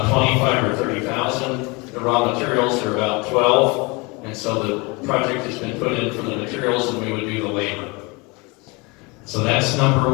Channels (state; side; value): quieter; right; 27.3 dB